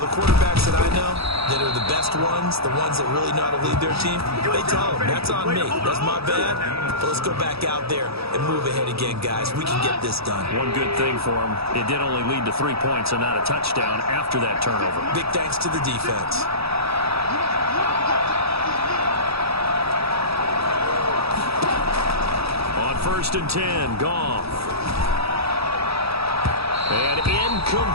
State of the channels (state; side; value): late; left; 0.77 ms